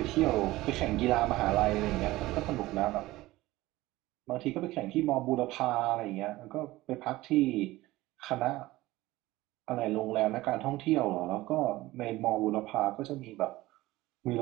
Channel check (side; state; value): left; quieter; 18.2 dB